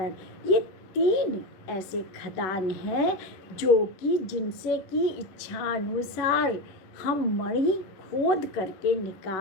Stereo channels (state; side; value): late; right; 10 ms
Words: ये तीन ऐसे खदान हैं जिनसे कि इच्छानुसार हम मणि खोद करके